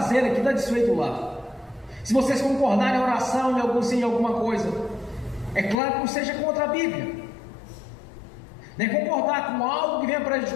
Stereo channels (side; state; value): right; drops out; at 5.8 s